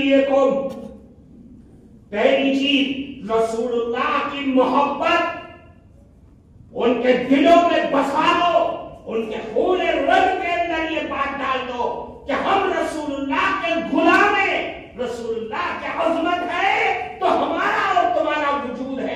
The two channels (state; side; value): identical; both; correlation 1.00